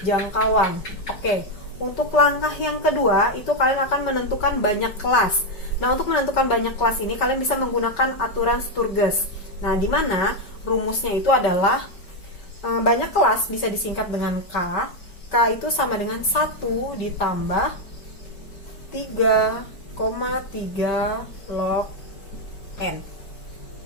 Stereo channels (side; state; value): right; late; 5.3 ms